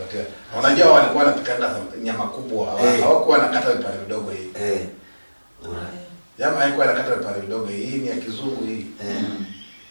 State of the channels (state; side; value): inverted; both; correlation -1.00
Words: unajua walikuwa wanapikana nyama kubwa hawakuwa nakata vipande vidogo hii jamaa haikuwa nakata vipande vidogo hii ni ya kizungu hii